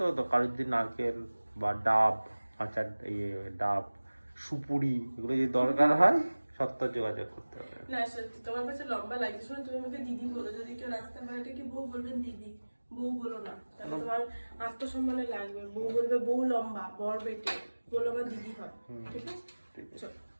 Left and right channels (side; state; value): both; inverted; correlation -1.00